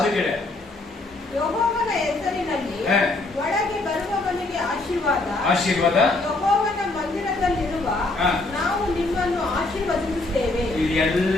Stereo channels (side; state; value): right; quieter; 3.0 dB